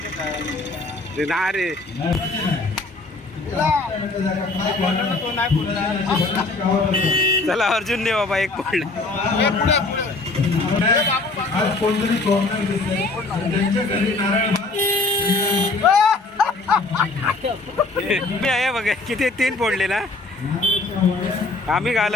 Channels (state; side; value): quieter; right; 3.3 dB